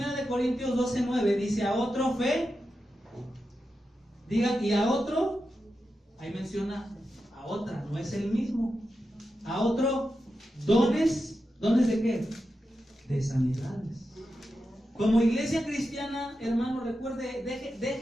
Corintios 12:9 dice, a otro fe, diga, y a otro, ahí menciona a otra, no es el mismo. A otro, ¿dones de qué? De sanidades. Como iglesia cristiana, hermano, recuerde,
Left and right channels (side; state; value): both; normal; correlation 0.89